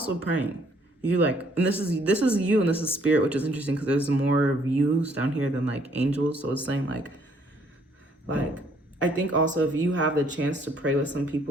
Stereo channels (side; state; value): both; normal; correlation 0.65